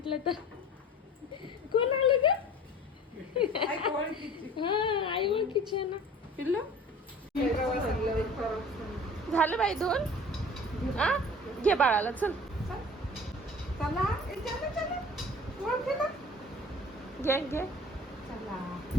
तर. कोण आलं ग? हा, आई ओळखीची आहे ना. पिल्लू झालं बाई धुवून. हा, घे बाळाला, चल घे घे.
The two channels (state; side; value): normal; both; correlation 0.43